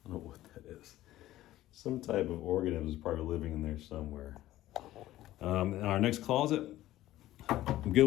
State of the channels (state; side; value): quieter; right; 14.9 dB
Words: I don't know what that is. Some type of organism is probably living in there somewhere. Our next closet, I'm good